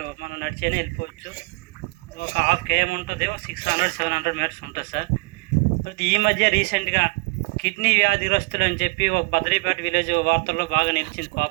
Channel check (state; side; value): quieter; left; 28.4 dB